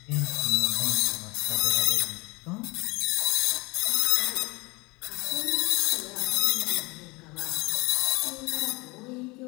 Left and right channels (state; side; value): quieter; right; 24.9 dB